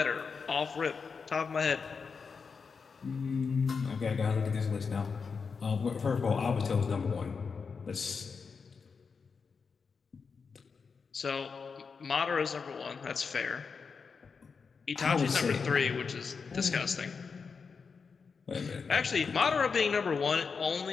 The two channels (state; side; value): quieter; right; 5.4 dB